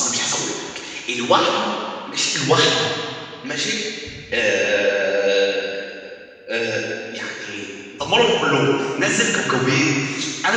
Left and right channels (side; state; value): both; identical; correlation 1.00